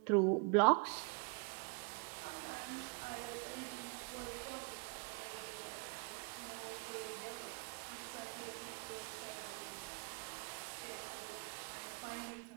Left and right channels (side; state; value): left; quieter; 33.0 dB